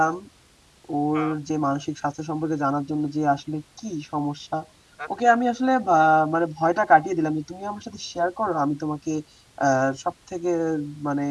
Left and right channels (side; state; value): both; identical; correlation 1.00